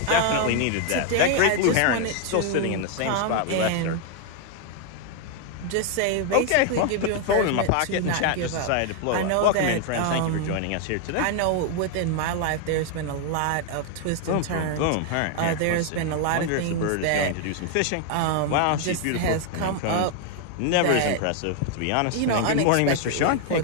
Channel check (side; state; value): both; different; correlation 0.00